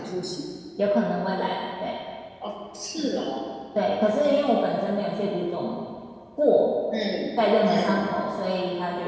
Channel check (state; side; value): identical; both; correlation 1.00